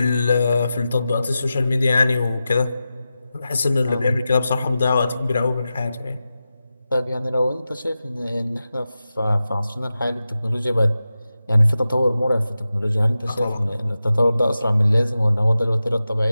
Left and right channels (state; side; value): inverted; both; correlation -0.93